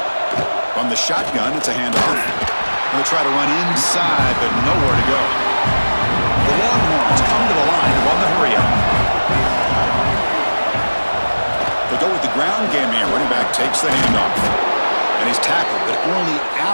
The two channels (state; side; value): inverted; both; correlation -1.00